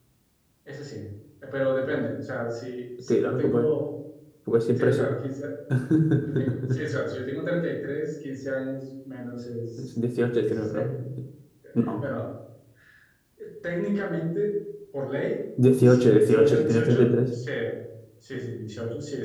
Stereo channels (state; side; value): identical; both; correlation 1.00